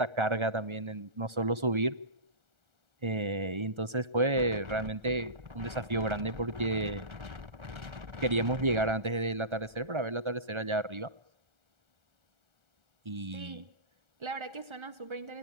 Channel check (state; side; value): late; left; 1.3 ms